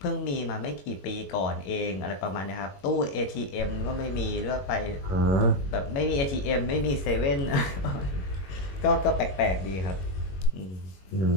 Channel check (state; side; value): late; right; 21 ms